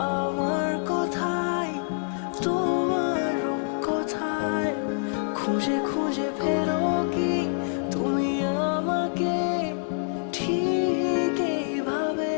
আমার কথায় তোমার রূপ কথায় খুঁজে খুঁজে ফেরো কি তুমি আমাকে ঠিক এইভাবে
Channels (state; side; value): silent; right; 56 dB below the other